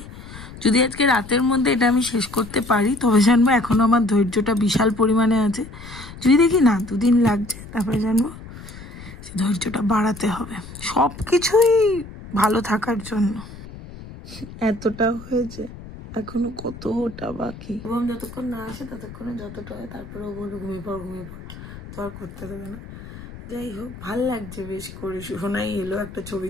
যদি আজকে রাতের মধ্যে এটা আমি শেষ করতে পারি তবে জানবো এখনো আমার ধৈর্যটা বিশাল পরিমাণে আছে। যদি দেখি না 2 দিন লাগছে, তারপরে জানবো ধৈর্যটা বাড়াতে হবে সব কিছুই ভালো থাকার জন্য। এতটা হয়েছে, এখনো কতটা বাকি, এবং যতক্ষণ না আসে ততক্ষণে যতটা হয়, তারপরে ও বলবো ঘুমিয়ে পড়, তো আর করতে দেবে না। যাই হোক, ভাল লাগছে বেশ করে। সোনাই এলো, একটা ছবি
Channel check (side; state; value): left; noise; rumble, 15 dB below the sound